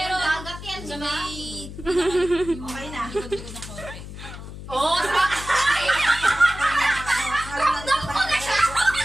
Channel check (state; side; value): noise; left; hum, 12 dB below the sound